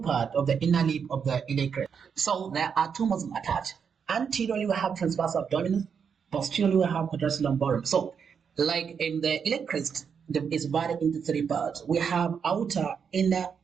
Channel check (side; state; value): left; quieter; 6.7 dB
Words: of the inner lip of the iliac crest. So, there are two muscles attached. Anteriorly, we have transverse abdominis. Posteriorly, we have quadratus lumborum. So, like in the iliac crest, is divided into three parts. We have outer, inner,